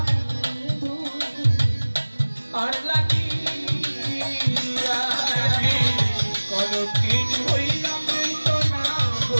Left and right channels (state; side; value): inverted; both; correlation -1.00